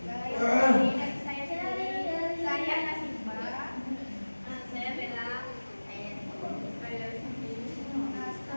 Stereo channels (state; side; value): inverted; both; correlation -1.00